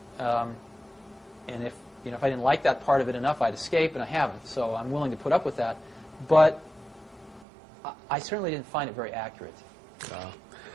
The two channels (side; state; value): left; drops out; at 7.5 s